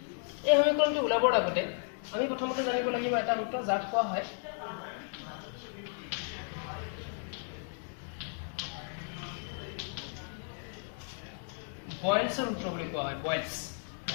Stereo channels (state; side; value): silent; right; 55 dB below the other